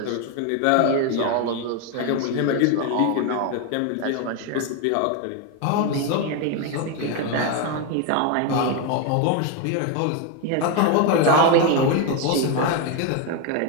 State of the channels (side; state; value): both; different; correlation 0.02